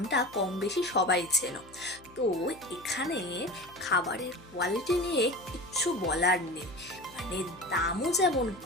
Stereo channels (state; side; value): noise; left; hum, 24 dB below the sound